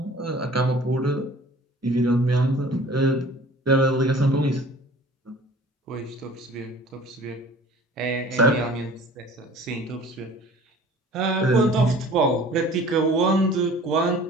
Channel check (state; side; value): normal; both; correlation 0.47